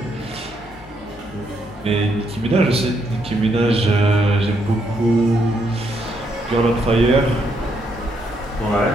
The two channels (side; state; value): both; normal; correlation 0.75